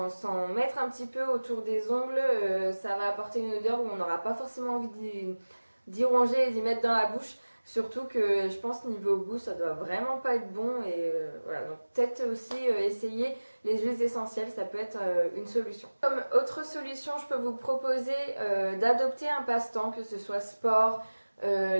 mettre un petit peu autour des ongles, ça va apporter une odeur où on n'aura pas forcément envie d'y ronger et d'y mettre dans la bouche. Surtout que je pense niveau goût, ça doit vraiment pas être bon. Et voilà, donc peut-être aussi essayer les huiles essentielles, ça peut être une solution. Comme autre solution, je peux vous proposer d'adopter un passe-temps, que ce soit sport,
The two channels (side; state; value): both; inverted; correlation -1.00